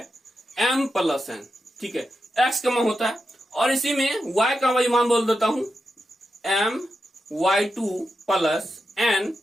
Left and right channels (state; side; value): normal; both; correlation 0.88